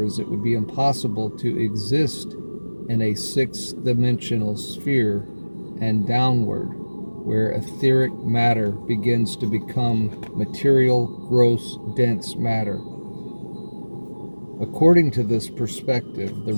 it would be impossible to exist in a sixth-dimensional sphere and downward, where etheric matter begins to become material, gross, dense matter. According to this perspective, the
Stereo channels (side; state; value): both; inverted; correlation -1.00